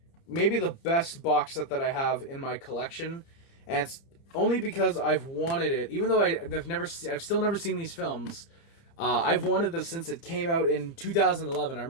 maybe the best box set that I have in my collection, and it's only because I've wanted it. Even though I've still never seen these films. I've wanted this since it came out in 2011. I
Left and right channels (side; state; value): right; late; 30 ms